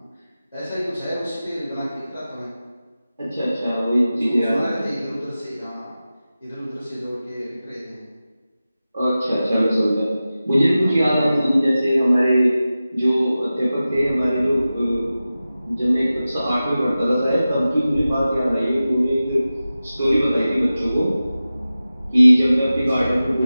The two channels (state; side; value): inverted; both; correlation -0.95